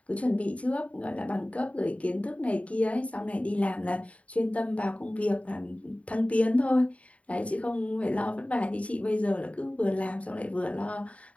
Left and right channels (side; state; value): right; late; 0.066 ms